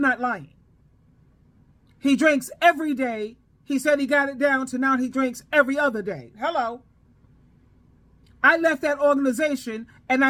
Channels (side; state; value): both; identical; correlation 1.00